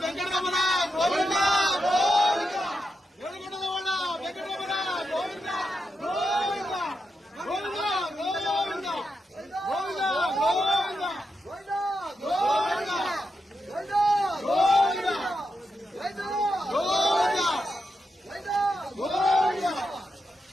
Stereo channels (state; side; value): normal; both; correlation 0.86